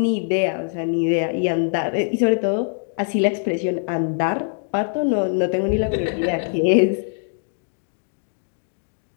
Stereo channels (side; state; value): right; silent; digital silence